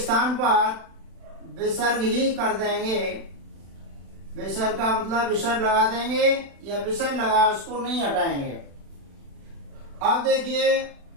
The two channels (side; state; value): left; late; 36 ms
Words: पर विसर्ग ही कर देंगे। विसर्ग का मतलब विसर्ग लगा देंगे, या विसर्ग लगा उसको नहीं हटाएंगे। अब देखिए